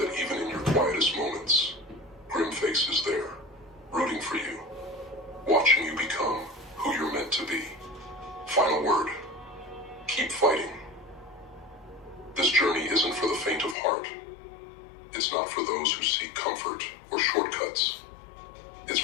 even in your quietest moments, Grimface is there, rooting for you, watching you become who you're meant to be. Final word, keep fighting. This journey isn't for the faint of heart. It's not for those who seek comfort or shortcuts. It's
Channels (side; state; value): right; drops out; at 13.8 s